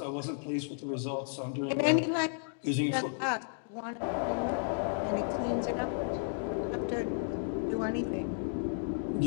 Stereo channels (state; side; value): silent; right; digital silence